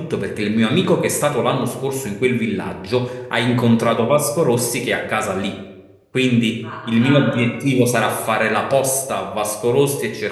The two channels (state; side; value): identical; both; correlation 1.00